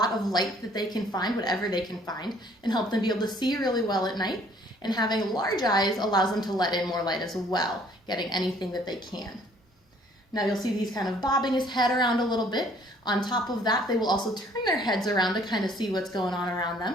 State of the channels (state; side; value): normal; both; correlation 0.59